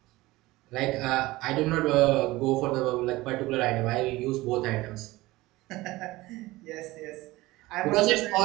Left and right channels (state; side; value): quieter; left; 19.2 dB